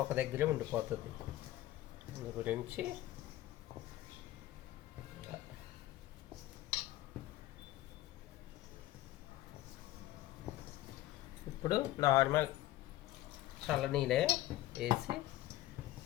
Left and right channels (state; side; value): quieter; right; 15.4 dB